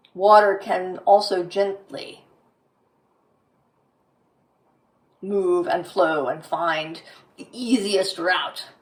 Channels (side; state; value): both; identical; correlation 1.00